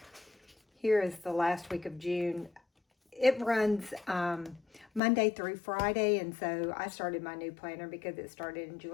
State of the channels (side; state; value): right; drops out; at 5.0 s